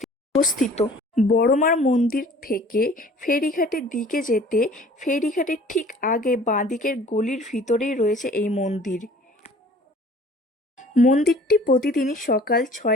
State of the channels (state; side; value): normal; both; correlation 0.50